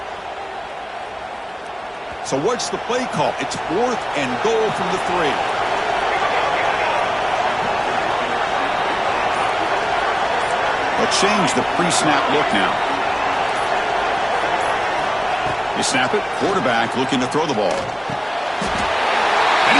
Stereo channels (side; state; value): both; identical; correlation 1.00